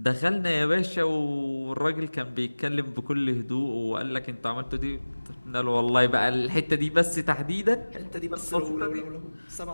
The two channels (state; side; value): inverted; both; correlation -1.00